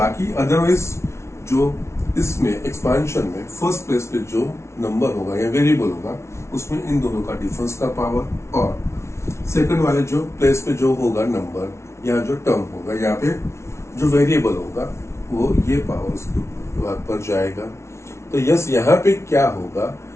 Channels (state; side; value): late; right; 0.13 ms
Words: अदरवाइज जो इसमें एक्सपांशन में फर्स्ट प्लेस पे जो नंबर होगा या वेरिएबल होगा उसमें इन दोनों का डिफरेंस का पावर, और सेकंड वाले जो प्लेस पे जो होगा नंबर या जो टर्म होगा यहाँ पे जो वेरिएबल होगा वो ये पावर उसके पर जाएगा। तो यस, यहाँ पे क्या होगा,